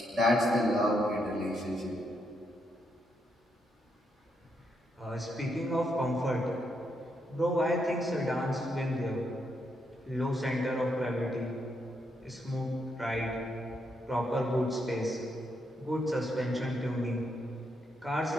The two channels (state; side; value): normal; both; correlation 0.79